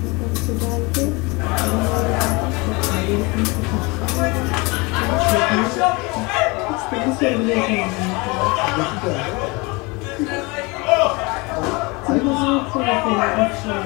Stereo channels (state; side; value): quieter; right; 26.4 dB